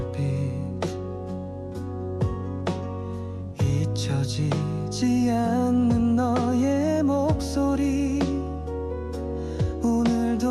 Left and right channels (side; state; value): both; identical; correlation 1.00